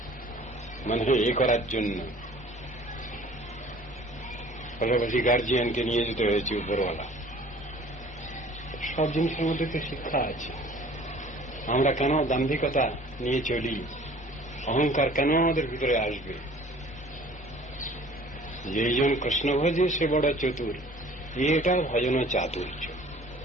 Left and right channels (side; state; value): both; normal; correlation 0.50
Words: মানে এ করার জন্য। পাশাপাশি গার্জিয়ানকে নিয়ে যেতে হয়েছে উপরওয়ালা। সব জিনিসের মধ্যে তো শিক্ষা আছে। আমরা কেন দাম্ভিকতা নিয়ে চলি? অহংকার কেন আমাদের ভিতরে আসবে? যেইজন কৃষ্ণ ভজে সে বড় চতুর, এটা ভজন চাতুর্য।